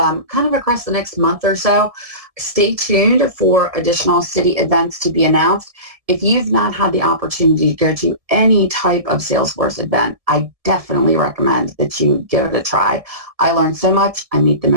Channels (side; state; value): left; late; 1.7 ms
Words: of across the next month or so. Stay tuned for additional city events to be announced. If you've not had the opportunity to go to any type of Salesforce event, I definitely recommend that you give it a try. I learned so much. I meet the